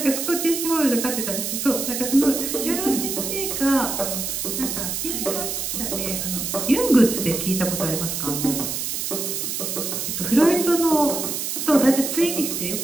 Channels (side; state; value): right; noise; hiss, 3 dB below the sound